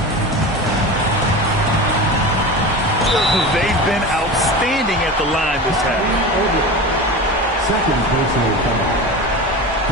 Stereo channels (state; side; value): normal; both; correlation 0.29